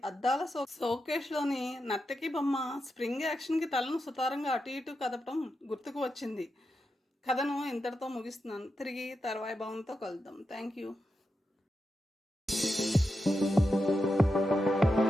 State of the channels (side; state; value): both; normal; correlation 0.87